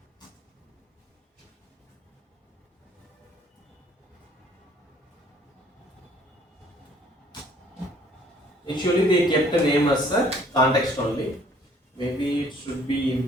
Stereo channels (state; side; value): normal; both; correlation 0.59